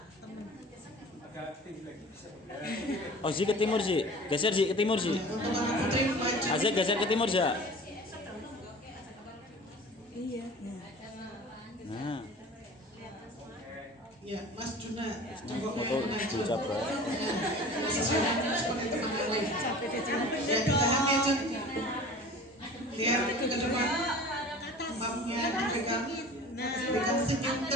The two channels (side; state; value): both; normal; correlation 0.41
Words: temen. Oh Zi ke timur Zi, geser Zi ke timur Zi. Untuk anak putri maju. Azek geser ke timur Za. Iya. Nah, Ya, Mas Juna jongkoknya foto maju. Bu Cabra. Seperti teman yang lain. Ya, tahan ya Jun. Lihat ke depan. Mapnya dipegang. Berikan senyum